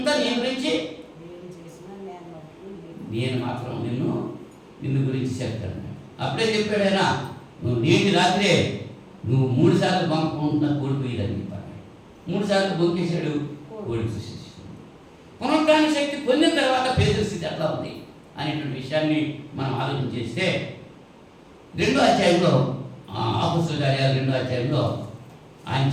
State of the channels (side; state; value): both; identical; correlation 1.00